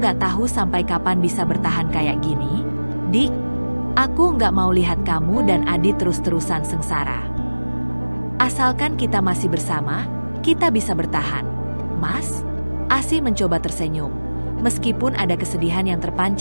nggak tahu sampai kapan bisa bertahan kayak gini. Dik, aku nggak mau lihat kamu dan Adit terus-terusan sengsara. Asalkan kita masih bersama, kita bisa bertahan. Mas, Asih mencoba tersenyum, meskipun ada kesedihan yang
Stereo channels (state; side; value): inverted; both; correlation -1.00